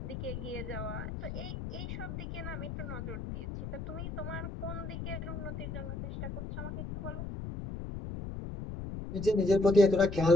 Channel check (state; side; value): noise; left; rumble, 6 dB below the sound